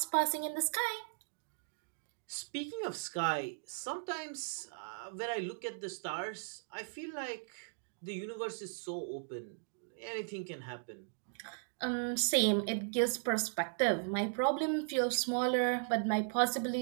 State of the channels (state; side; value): silent; left; digital silence